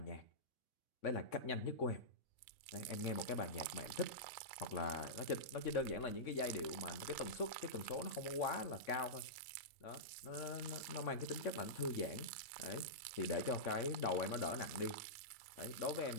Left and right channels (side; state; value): right; late; 3.5 ms